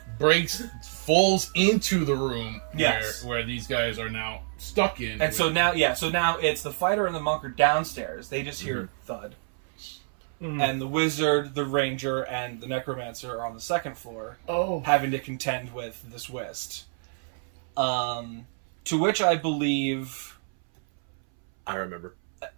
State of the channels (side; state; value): left; silent; 60 dB below the other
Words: falls into the room Yes. where these guys are now stuck in. And so now it's the fighter and the monk are downstairs. They just hear thud. And the wizard, the ranger, and the necromancer are on the 2nd floor, having to contend with this whist. To which I believe... I remember.